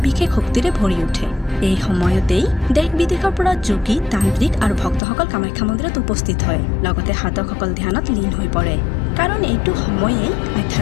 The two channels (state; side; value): drops out; right; at 5.0 s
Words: বিশেষ শক্তিৰে ভৰি উঠে। এই সময়তেই দেশ বিদেশৰ পৰা যোগী, তান্ত্ৰিক আৰু ভক্তসকল কামাখ্যা মন্দিৰত উপস্থিত হয়। লগতে সাধকসকল ধ্যানত লীন হৈ পৰে, কাৰণ এইটো সময়েই